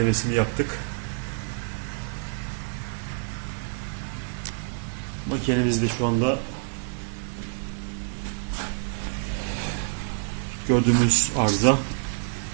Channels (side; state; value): left; silent; 60 dB below the other